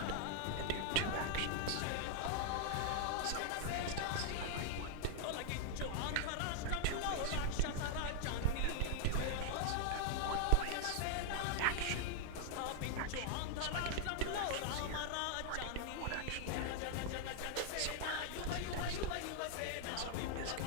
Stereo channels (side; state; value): both; different; correlation 0.00